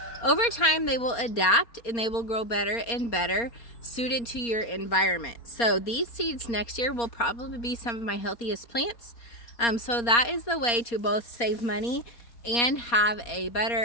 over time, they will adapt and they will grow better and better suited to your environment. So these seeds next year will probably be some of my healthiest plants. So that is the way to both save money and have a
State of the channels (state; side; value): late; right; 4.3 ms